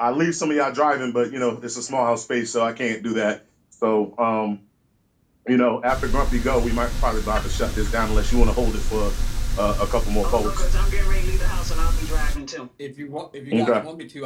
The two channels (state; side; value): identical; both; correlation 1.00